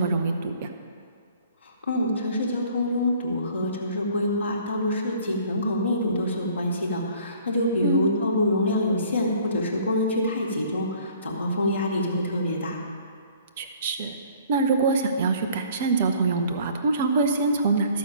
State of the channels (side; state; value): both; inverted; correlation -0.54